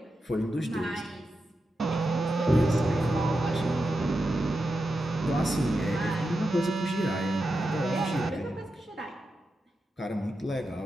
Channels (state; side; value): normal; both; correlation 0.89